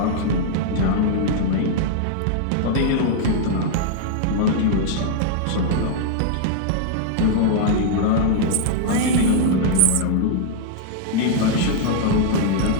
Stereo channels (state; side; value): different; both; correlation -0.01